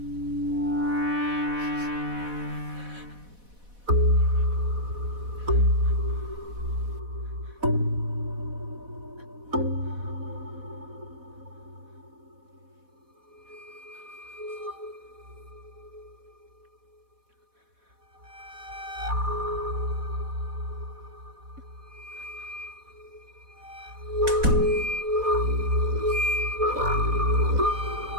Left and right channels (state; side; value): late; left; 4.1 ms